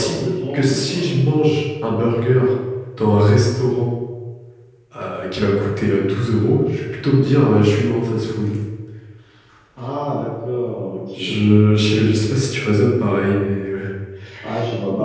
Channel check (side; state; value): both; identical; correlation 1.00